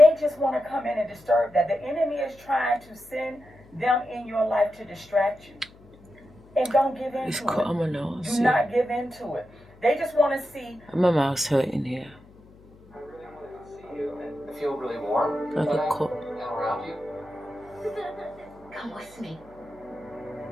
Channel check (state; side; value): noise; left; hum, 25 dB below the sound